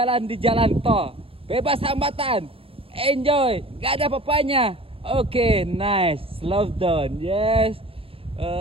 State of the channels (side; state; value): left; late; 0.27 ms